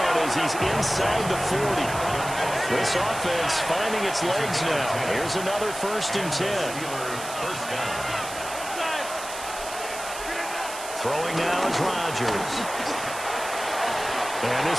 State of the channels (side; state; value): right; noise; hiss, 10 dB below the sound